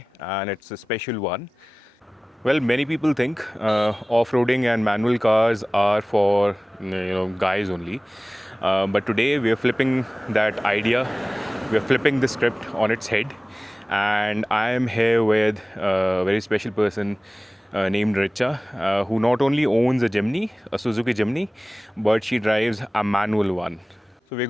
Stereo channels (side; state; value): both; normal; correlation 0.98